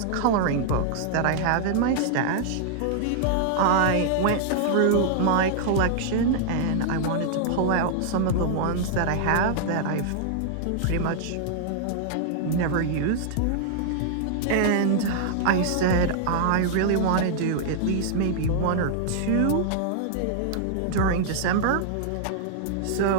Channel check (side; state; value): both; different; correlation -0.01